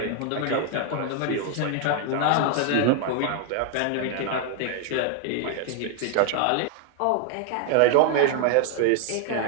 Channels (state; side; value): different; both; correlation 0.01